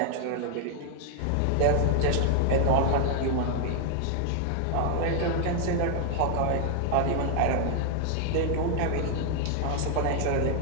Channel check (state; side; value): different; both; correlation 0.00